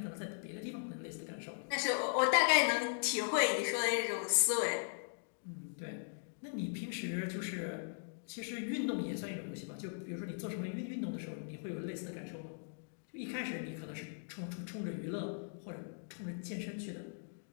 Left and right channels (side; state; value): right; silent; digital silence